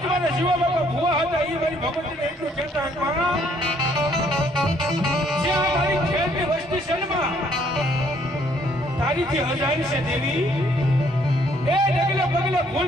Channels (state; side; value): normal; both; correlation 0.65